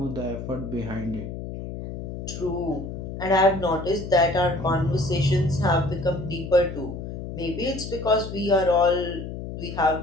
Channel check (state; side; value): noise; left; hum, 8 dB below the sound